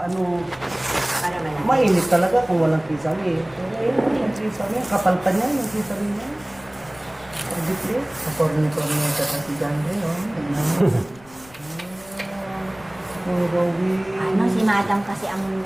Para malaki. Mainit talaga kung walang kisame. Pero yun, yung kisame. Kapal pa niya, yung kisame niya. Pagdipre. Kaporni-porni ka kasi dyan rin, oh. Oh, Rowie. Si madam kasi ang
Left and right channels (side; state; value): left; noise; rumble, 25 dB below the sound